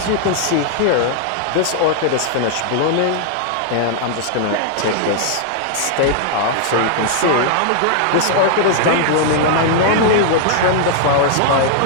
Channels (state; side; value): different; both; correlation -0.01